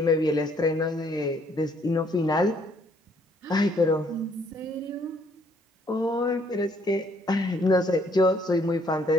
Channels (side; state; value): both; normal; correlation 0.65